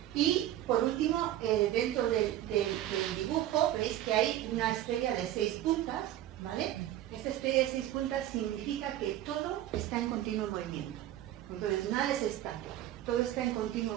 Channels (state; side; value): quieter; left; 13.0 dB